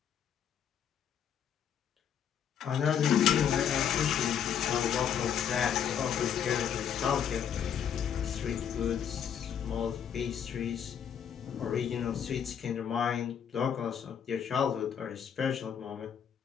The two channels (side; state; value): right; quieter; 8.4 dB